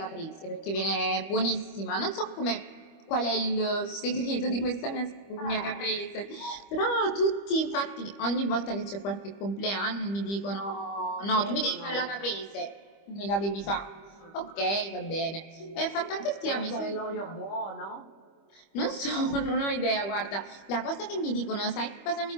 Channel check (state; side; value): late; right; 25 ms